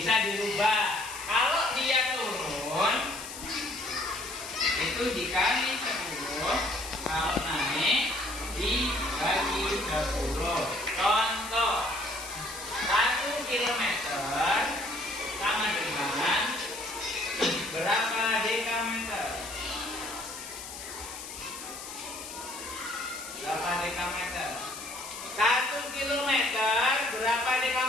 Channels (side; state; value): left; noise; hiss, 11 dB below the sound